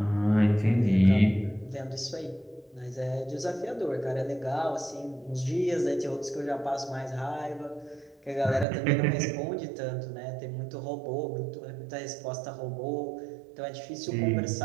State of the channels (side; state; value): left; drops out; at 8.7 s